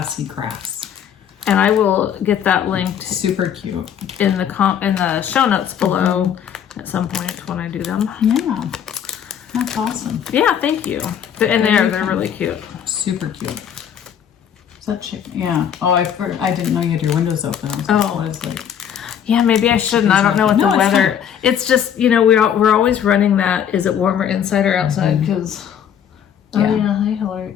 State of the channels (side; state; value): right; quieter; 8.9 dB